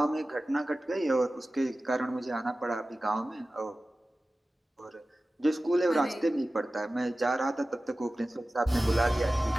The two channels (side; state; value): both; normal; correlation 0.96